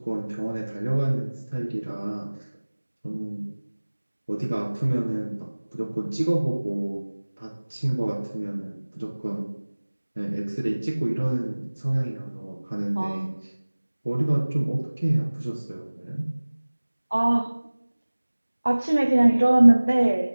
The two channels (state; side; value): inverted; both; correlation -1.00